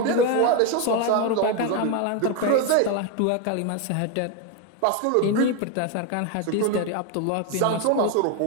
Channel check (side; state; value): both; different; correlation 0.02